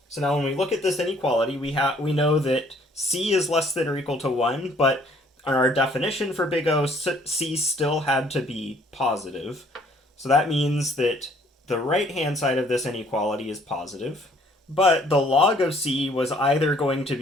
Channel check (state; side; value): normal; both; correlation 0.61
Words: So now when we look at this inequality, we know that C is less than or equal to 1, but on our definition for big O, C still had to be positive. So that means that the right-hand side of this inequality is positive. But the log of C was either going to